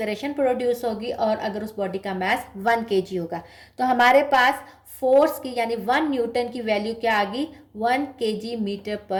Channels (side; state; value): both; identical; correlation 1.00